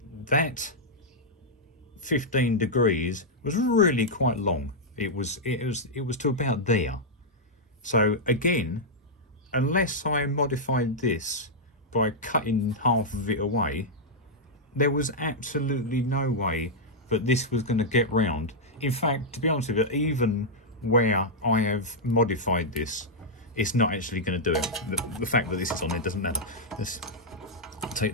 that 15 degrees was really quite long. It was to about there. So again, unless I modified this by cutting half of it away, there was absolutely no way that this was going to get round. In fact, to be honest with you, even where I have modified this, it's not actually going to do it. The fact that this is on there doesn't matter. Let's take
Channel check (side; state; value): both; normal; correlation -0.06